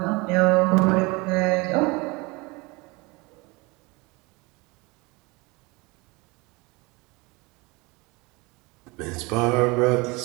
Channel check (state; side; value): quieter; left; 25.6 dB